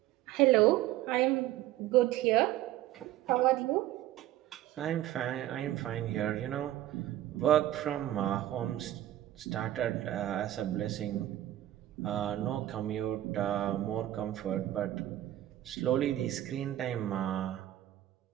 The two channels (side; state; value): left; quieter; 13.8 dB